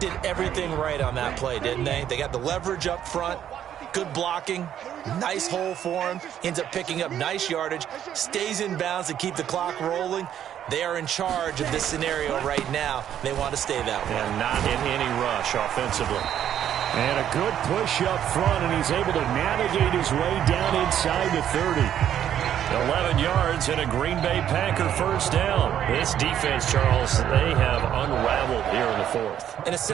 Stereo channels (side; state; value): left; quieter; 10.2 dB